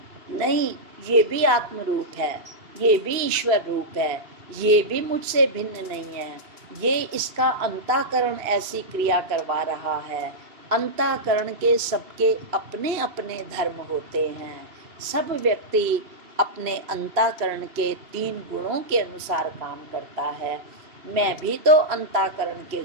नहीं, ये भी आत्म रूप है, ये भी ईश्वर रूप है, ये भी मुझसे भिन्न नहीं है, ये इसका अंतःकरण ऐसी क्रिया करवा रहा है। अंतःकरण के सबके अपने अपने धर्म होते हैं। सब व्यक्ति अपने अंतःकरण के 3 गुणों के अनुसार काम करता है। मैं भी तो अंतःकरण के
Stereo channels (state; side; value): late; left; 2.6 ms